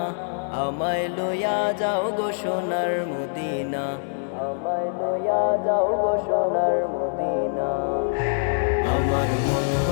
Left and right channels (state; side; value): silent; right; 62 dB below the other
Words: আমায় লইয়া যাও গো সোনার মদিনা, আমায় লইয়া যাও গো সোনার মদিনা। আমার মন